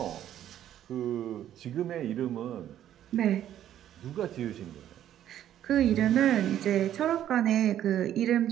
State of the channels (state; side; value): quieter; left; 11.3 dB